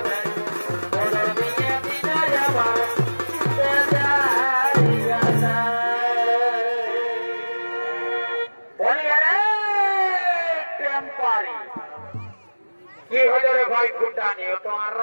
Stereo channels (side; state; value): both; inverted; correlation -1.00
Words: ভাই ফুটানি ও তো আর